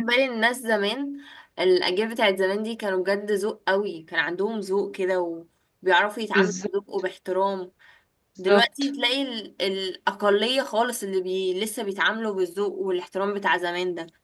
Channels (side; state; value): both; identical; correlation 1.00